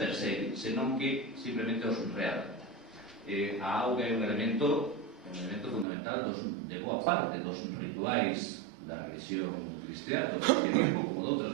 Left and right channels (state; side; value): drops out; left; at 5.9 s